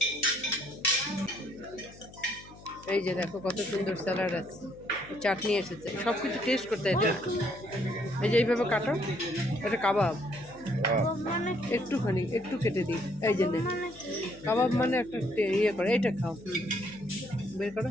এই যে দেখো কত সুন্দর স্যালাড আছে, চাটনি এসেছে, সব কিছু টেস্ট করতে হয়। এটা এই যে এইভাবে কাটো, এটা কাবাব। একটুখানি একটু কেটে দিই, এই যে নে। কাবাব মানে একটা ইয়ে করে, এইটা খাও। বের করো,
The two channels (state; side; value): noise; left; hum, 20 dB below the sound